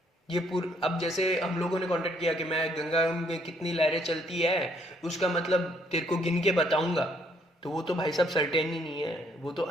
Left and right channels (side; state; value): both; normal; correlation 0.67